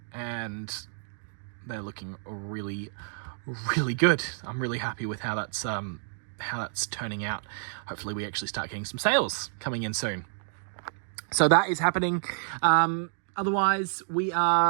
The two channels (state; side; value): silent; left; digital silence